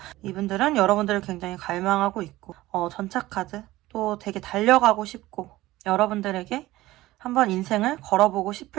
이분들은 여러분들을 굉장히 갈망하고 있고, 전차카드, 또 되게 달려가고 싶고, 여러분들에게 한번 인생을 걸어보고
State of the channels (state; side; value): quieter; left; 17.2 dB